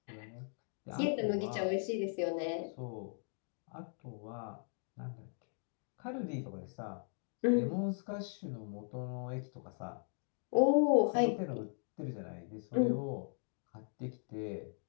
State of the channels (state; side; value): silent; right; 52 dB below the other